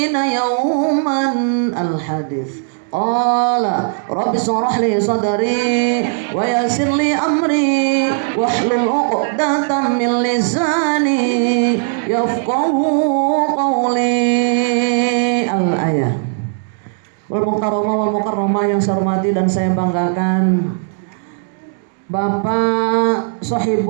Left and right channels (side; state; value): left; silent; digital silence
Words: yawman. Al-hadits. Qala rabbi shrah li sadri wa yassir li amri wahlul 'uqdatam min lisani yafqahu qawli. Al-ayah. Wal mukarramah wal mukarramah yang saya hormati dan saya banggakan Bapak